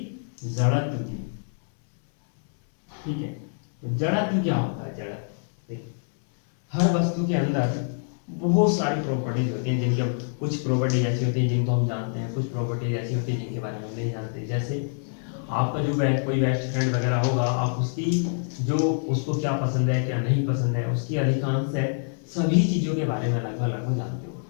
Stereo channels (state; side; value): silent; right; 61 dB below the other